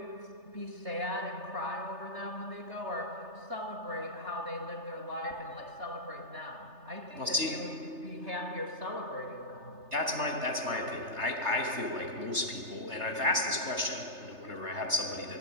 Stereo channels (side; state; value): left; late; 3.3 ms